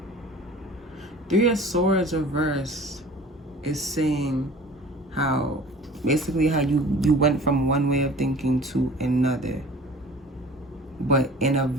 Three of Swords reverse is saying how basically how you went from one way of thinking to another, but in a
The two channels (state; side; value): normal; both; correlation 0.45